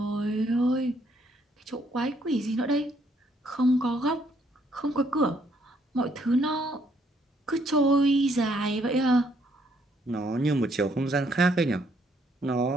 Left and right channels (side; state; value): both; normal; correlation 0.69